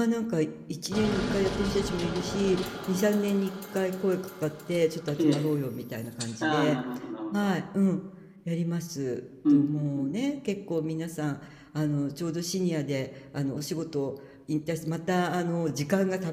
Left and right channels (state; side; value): identical; both; correlation 1.00